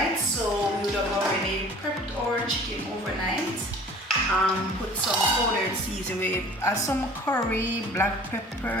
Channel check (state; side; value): normal; both; correlation 0.47